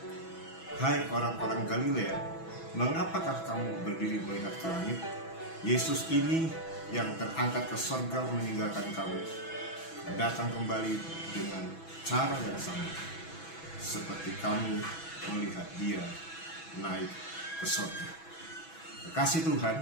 hai orang-orang Galilea, mengapakah kamu berdiri melihat ke langit? Yesus ini yang terangkat ke surga meninggalkan kamu, datang kembali dengan cara yang sama, seperti kamu melihat dia naik ke surga. Kasih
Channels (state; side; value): late; right; 6.1 ms